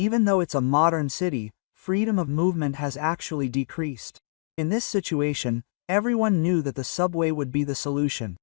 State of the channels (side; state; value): right; silent; digital silence